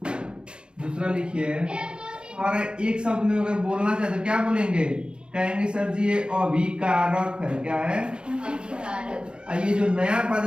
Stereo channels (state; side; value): late; left; 0.052 ms